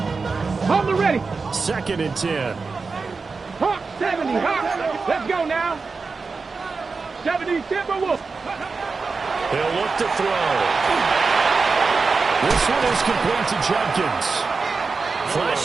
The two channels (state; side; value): quieter; left; 4.5 dB